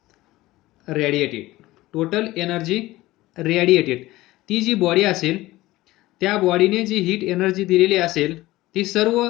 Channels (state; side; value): quieter; right; 17.9 dB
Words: radiated, ती जी बॉडी असेल त्या बॉडीने जी हीट एनर्जी दिलेली असेल ती सर्व